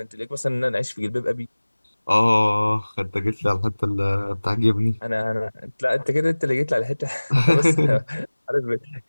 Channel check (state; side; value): inverted; both; correlation -1.00